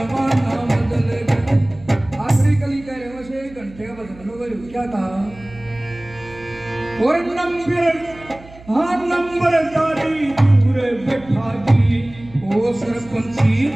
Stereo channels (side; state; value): right; noise; hum, 21 dB below the sound